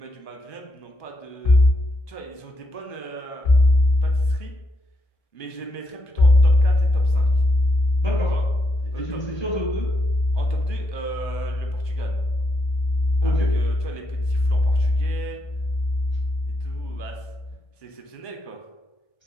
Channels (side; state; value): right; late; 1.2 ms